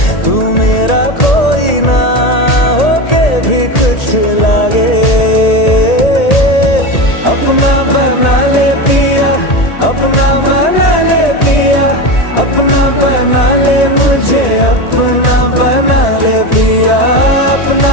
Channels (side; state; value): right; late; 1.8 ms